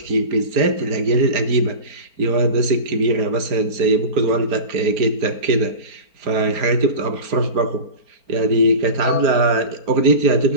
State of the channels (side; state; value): left; late; 4.4 ms